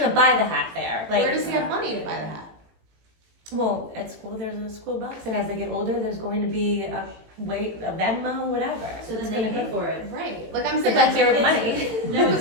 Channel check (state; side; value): late; left; 18 ms